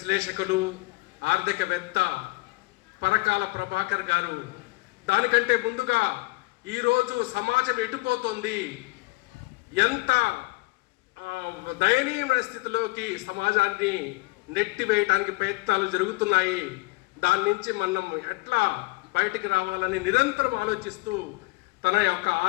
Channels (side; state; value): right; quieter; 25.6 dB